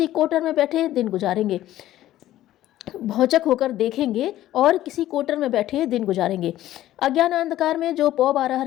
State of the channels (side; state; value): right; quieter; 13.9 dB